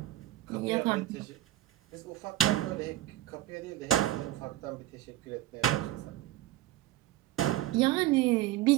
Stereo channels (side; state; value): left; quieter; 14.8 dB